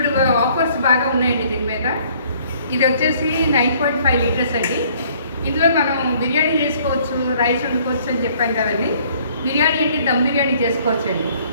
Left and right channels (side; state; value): both; inverted; correlation -0.60